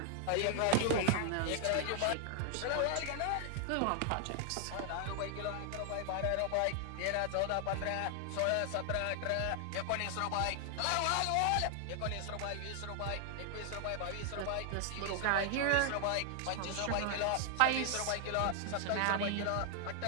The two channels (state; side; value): different; both; correlation 0.00